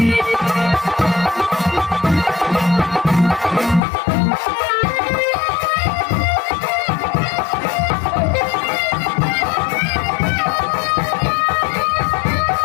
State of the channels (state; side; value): drops out; right; at 3.8 s